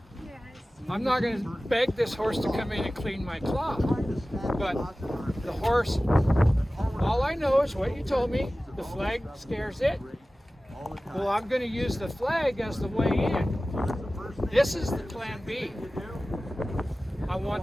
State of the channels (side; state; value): both; normal; correlation 0.96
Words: I'm not going to beg this horse to come in and clean my cloth. But the horse, all I know is what you told me. The flag scares it. Well, I'm going to use the flag as the way in. This is the plan B. I